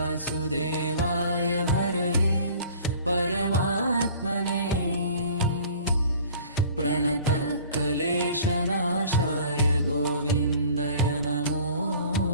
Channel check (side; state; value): both; inverted; correlation -0.48